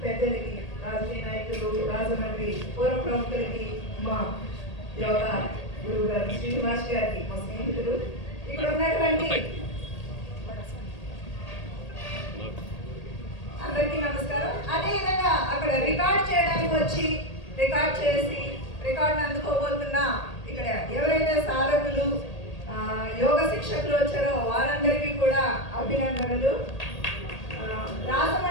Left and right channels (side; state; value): right; late; 1.8 ms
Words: పెద్దలకి, రాజకీయ నాయకులు, రాజమండ్రి పూర్వ ప్రముఖులకి, మా యోగా గురువు గారు శ్రీనివాస్ గారికి, మా స్నేహితులు, ఇక్కడ ఉన్నటువంటి అందరికీ నమస్కారం. అదేవిధంగా అక్కడ రికార్డ్ చేయడానికి వచ్చి రికార్డ్ చేసి రికార్డును అందుకోబోతున్న ఇక్కడ ఎవరైతే సాధకులు యోగ శిక్షకులు వచ్చారో వారందరికీ కూడా అభినందనలు.